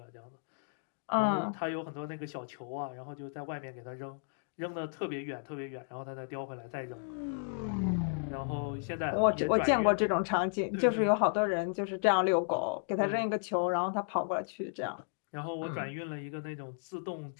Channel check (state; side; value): silent; right; digital silence